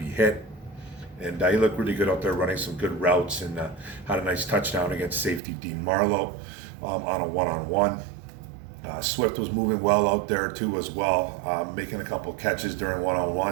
hit. And he looked really good out there running some good routes and had a nice touchdown against safety Dean Marlowe on a one-on-one. Swift was moving well out there too as well, making a couple catches during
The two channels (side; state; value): left; drops out; at 5.4 s